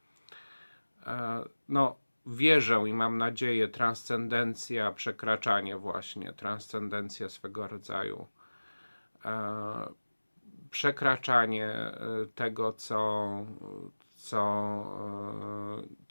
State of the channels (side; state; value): both; inverted; correlation -1.00